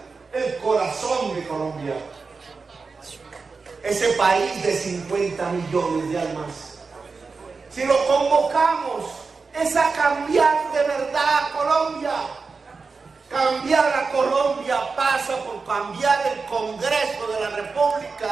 el corazón de Colombia. Ese país de 50 millones de almas. Si lo convocamos, es a cambiar de verdad a Colombia. Cambiar a Colombia pasa por cambiar el Congreso de la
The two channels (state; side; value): quieter; left; 4.5 dB